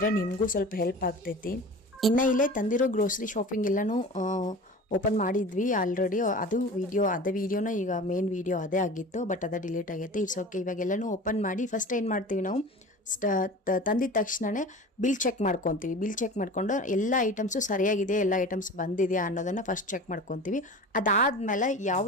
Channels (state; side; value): normal; both; correlation 0.36